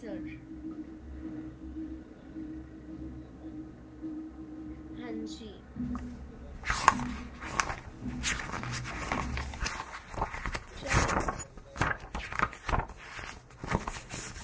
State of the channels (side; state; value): both; identical; correlation 1.00